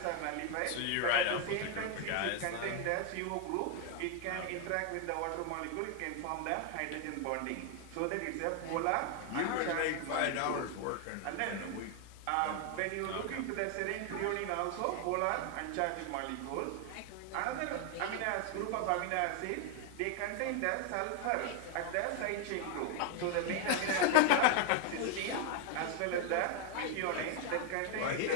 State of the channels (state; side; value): different; both; correlation 0.01